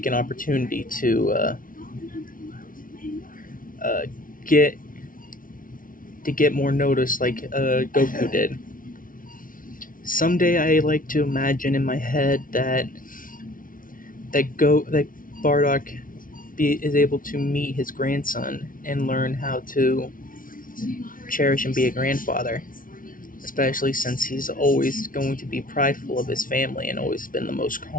an opportunity to get more notice like Goku did. Someday I like to imagine in my head that Bardock is able to meet his grandson and learn how to cherish and be a grandfather, especially since he's always going to be prideful of his family and always been the most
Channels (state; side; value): late; right; 0.39 ms